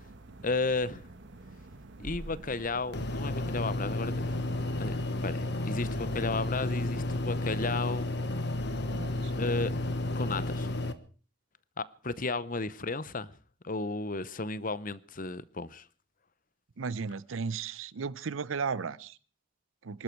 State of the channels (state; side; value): normal; both; correlation 0.36